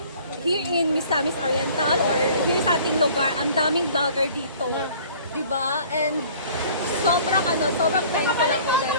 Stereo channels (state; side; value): inverted; both; correlation -0.51